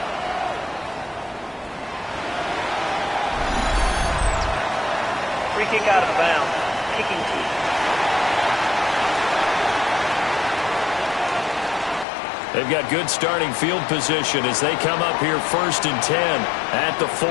Free kick out of bounds. Kicking team. They've got good starting field position as they come up here 1st and 10 at the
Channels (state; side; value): drops out; right; at 12.1 s